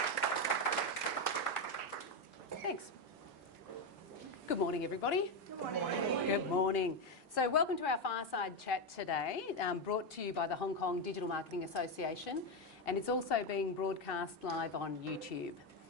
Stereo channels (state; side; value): normal; both; correlation 0.08